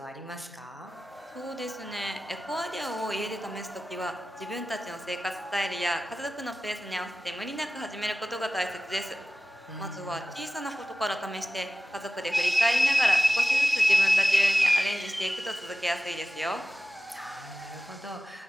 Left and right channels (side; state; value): both; normal; correlation 0.95